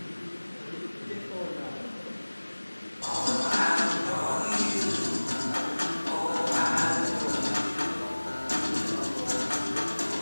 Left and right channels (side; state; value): both; inverted; correlation -1.00